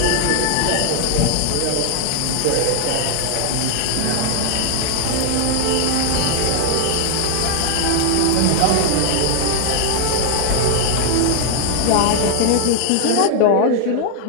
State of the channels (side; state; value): both; different; correlation 0.00